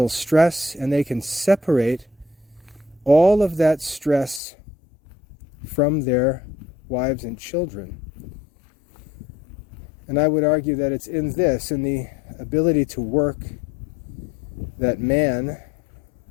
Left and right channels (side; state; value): right; drops out; at 4.4 s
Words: stress, and they can separate all of that stress from their wives and children. And I would argue that it's in this, in the ability to work, that man